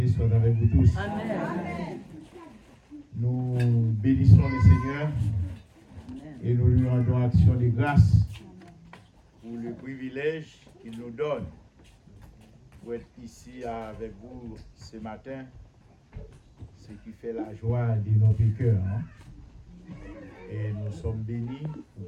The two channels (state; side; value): identical; both; correlation 1.00